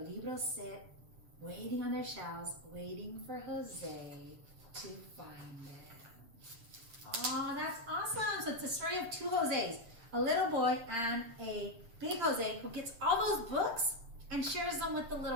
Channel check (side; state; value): left; late; 8.5 ms